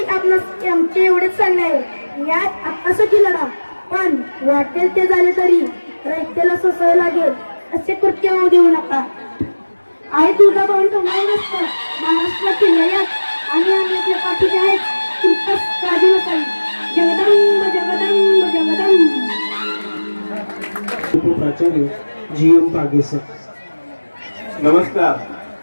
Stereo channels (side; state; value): both; inverted; correlation -1.00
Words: आपणास आमचे एवढेच सांगणे आहे, यात आत्तासाठी लढा, पण वाटेल ते झाले तरी रयतेला सोसावे लागेल असे कृत्य होऊ देऊ नका. आई तुझा भाऊ तुम्हाला नसतं महाराष्ट्रातील लयात आणि आम्ही आपल्या पाठीचे आहेत. तुमचाच काळजी नसावी. जगदंब जगदंब जगदंब. उपप्राचार्य जी.एम. पागे सर. नमस्कार.